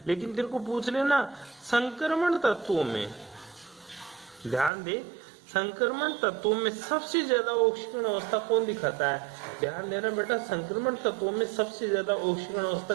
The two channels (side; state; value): left; drops out; at 4.7 s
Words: लेकिन तेरे को पूछ लेना संक्रमण तत्वों में, ध्यान दे, संक्रमण तत्वों में सबसे ज्यादा ऑक्सीकरण अवस्था कौन दिखाता है? ध्यान देना बेटा, संक्रमण तत्वों में सबसे ज्यादा ऑक्सीकरण